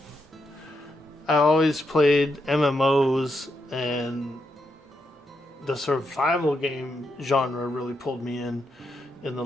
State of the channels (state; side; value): normal; both; correlation 0.82